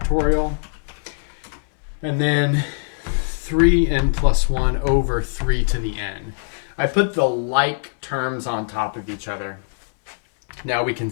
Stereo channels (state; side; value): silent; right; 64 dB below the other